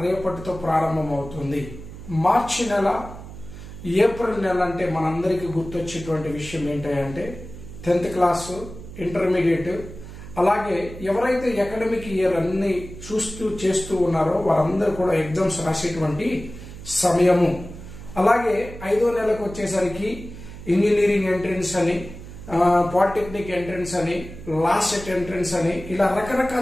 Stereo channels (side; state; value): right; noise; hum, 13 dB below the sound